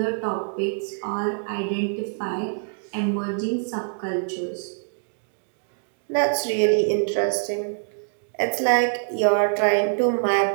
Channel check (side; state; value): left; silent; digital silence